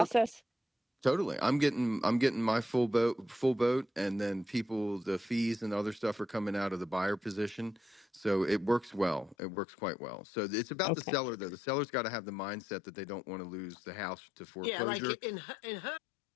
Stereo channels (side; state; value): right; drops out; at 9.3 s